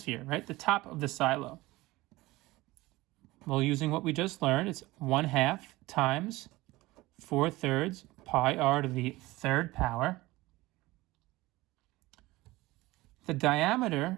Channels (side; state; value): left; quieter; 19.6 dB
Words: right? The top of the silo. Well, using what we just learned, it's 1/2 times 4/3 pi r to the third power. The